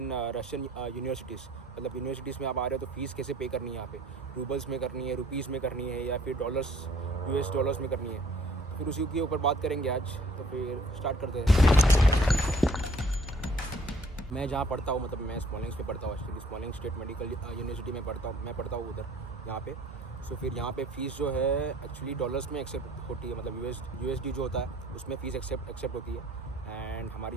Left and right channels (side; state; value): both; normal; correlation 0.56